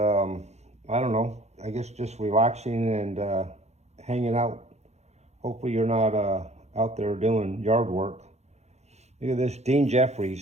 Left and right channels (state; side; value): late; left; 0.32 ms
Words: don't know, I guess just relaxing and hanging out. Hopefully you're not out there doing yard work. Look at this, Dean